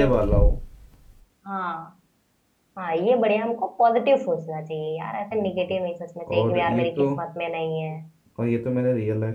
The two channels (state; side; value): identical; both; correlation 1.00